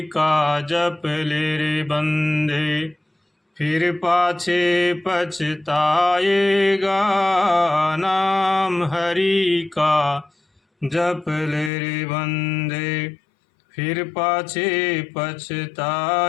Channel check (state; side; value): drops out; right; at 11.7 s